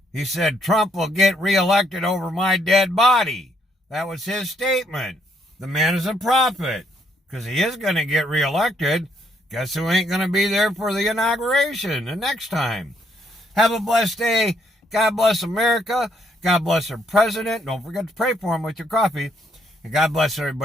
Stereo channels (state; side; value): normal; both; correlation 0.71